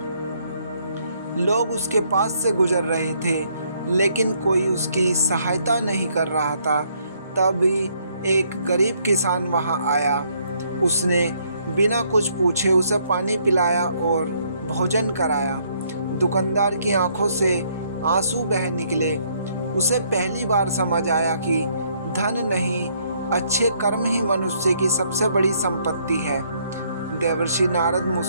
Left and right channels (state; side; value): inverted; both; correlation -0.69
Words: लोग उसके पास से गुजर रहे थे लेकिन कोई उसकी सहायता नहीं कर रहा था। तभी एक गरीब किसान वहां आया। उसने बिना कुछ पूछे उसे पानी पिलाया और भोजन कराया। दुकानदार की आंखों से आंसू बह निकले। उसे पहली बार समझ आया कि धन नहीं, अच्छे कर्म ही मनुष्य की सबसे बड़ी संपत्ति है। देवर्षि नारद